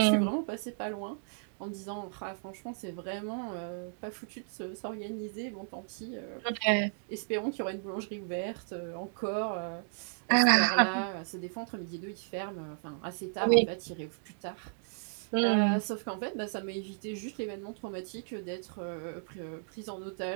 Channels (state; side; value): silent; left; 55 dB below the other